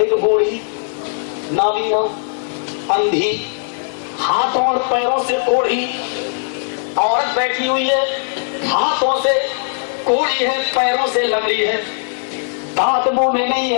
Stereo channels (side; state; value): right; silent; 61 dB below the other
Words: بوڑھی نابینا اندھی ہاتھوں اور پیروں سے کوڑھی عورت بیٹھی ہوئی ہے. ہاتھوں سے کوڑی ہے, پیروں سے لنگڑی ہے, دانت منہ میں نہیں ہے